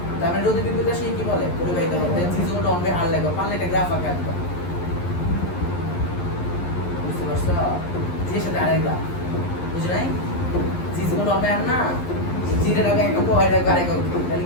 তার মানে রোধের বিপরীত রাশি কি বলে পরিবাহিতা বলে G = 1/r লাগবে পারলে এটা গ্রাফ আঁকা দিবা বুঝতে পারছো G এর সাথে আরেক গ্রাফ বুঝছ নাই G = 1/r না G এর আগে একটা y এর আগে আরেক তাহলে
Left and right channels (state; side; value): late; right; 11 ms